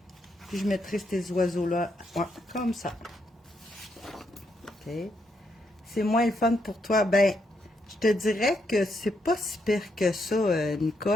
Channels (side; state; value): both; normal; correlation 0.78